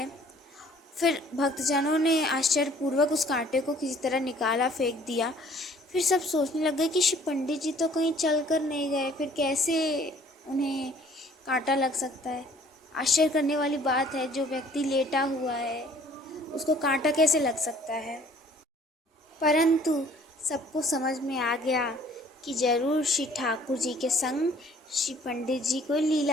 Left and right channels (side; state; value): both; normal; correlation 0.56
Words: फिर भक्तजनों ने आश्चर्यपूर्वक उस कांटे को किसी तरह निकाला, फेंक दिया। फिर सब सोचने लग गए कि श्री पंडित जी तो कहीं चल कर नहीं गए, फिर कैसे उन्हें कांटा लग सकता है। आश्चर्य करने वाली बात है, जो व्यक्ति लेटा हुआ है उसको कांटा कैसे लग सकता है। परंतु सबको समझ में आ गया कि जरूर श्री ठाकुर जी के संग श्री पंडित जी कोई